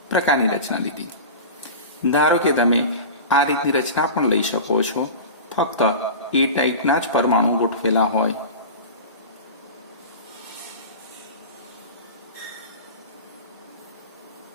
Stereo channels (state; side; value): inverted; both; correlation -0.31